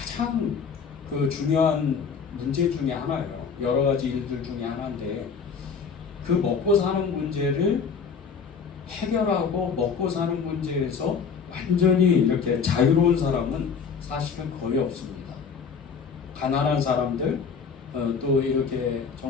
그 중요한 문제 중에 하나예요. 여러 가지 일들 중에 하나인데 그 먹고 사는 문제를 해결하고 먹고 사는 문제에서 완전히 이렇게 자유로운 사람은 사실은 거의 없습니다. 가난한 사람들, 또 이렇게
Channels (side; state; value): right; quieter; 6.0 dB